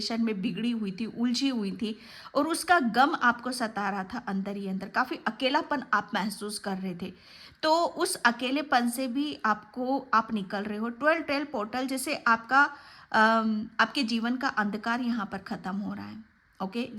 में बिगड़ी हुई थी, उलझी हुई थी, और उसका गम आपको सता रहा था अंदर ही अंदर, काफ़ी अकेलापन आप महसूस कर रहे थे। तो उस अकेलेपन से भी आप निकल रहे हो। 12-12 पोर्टल जैसे आपके जीवन का अंधकार यहाँ पर ख़त्म हो रहा है, ओके।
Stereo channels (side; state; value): both; identical; correlation 1.00